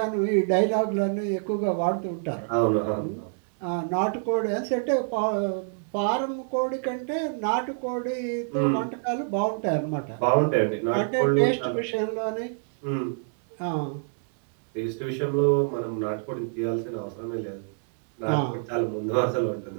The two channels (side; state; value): left; silent; digital silence